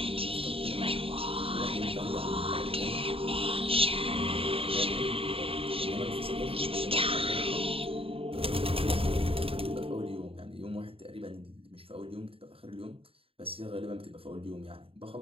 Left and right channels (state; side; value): late; left; 0.27 ms